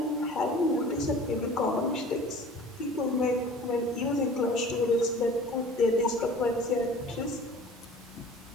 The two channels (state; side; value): normal; both; correlation 0.44